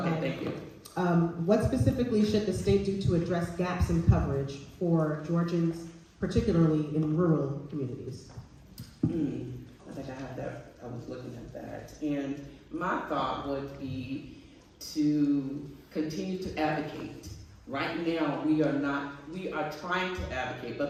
Okay, thank you. What specifically should the state do to address gaps in coverage for Georgians, particularly in rural communities? I think I had that. I was looking at that. And my thought would be to continue to advocate. Right now, we are trying to advocate, but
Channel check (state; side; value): identical; both; correlation 1.00